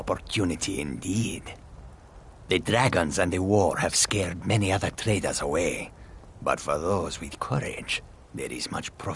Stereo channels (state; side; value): identical; both; correlation 1.00